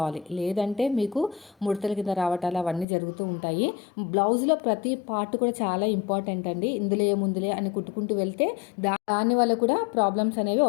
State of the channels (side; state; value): right; drops out; at 2.9 s